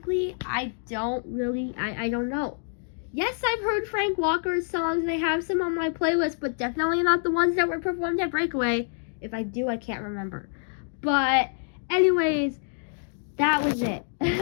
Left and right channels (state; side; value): silent; right; digital silence